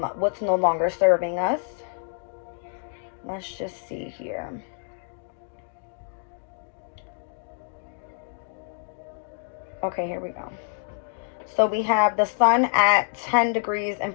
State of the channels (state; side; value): silent; right; 60 dB below the other